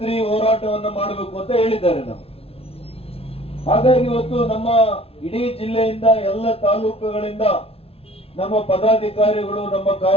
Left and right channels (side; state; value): right; late; 0.28 ms